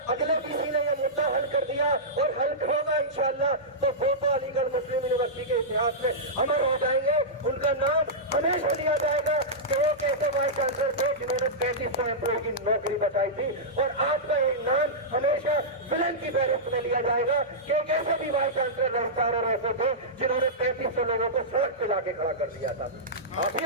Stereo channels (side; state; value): both; normal; correlation -0.13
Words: अगले वीसी ने ये मुद्दा हल कर दिया और हल होगा इंशाअल्लाह, तो वो तो अलीगढ़ मुस्लिम यूनिवर्सिटी के इतिहास में अमर हो जाएंगे। उनका नाम हमेशा लिया जाएगा कि वो कैसे वाइस चांसलर थे जिन्होंने 3500 एम्प्लॉय की नौकरी बचाई थी। और आज का एक नाम हमेशा विलन की फहरिस्त में लिया जाएगा कि एक ऐसे भी वाइस चांसलर रजिस्ट्रार और ऐसे थे जिन्होंने 3500 लोगों को सड़क पे लाके खड़ा कर दिया था। आप